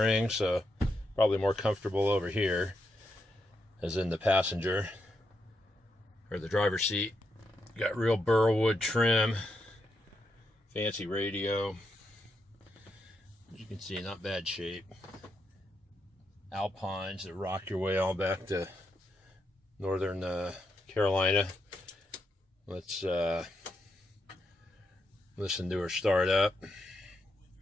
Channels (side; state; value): both; normal; correlation 0.82